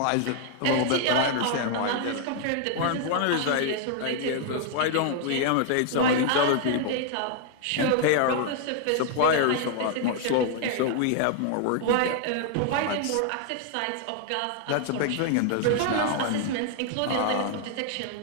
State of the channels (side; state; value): both; different; correlation 0.00